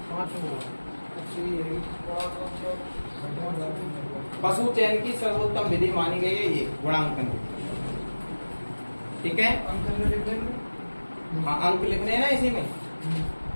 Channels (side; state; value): both; inverted; correlation -1.00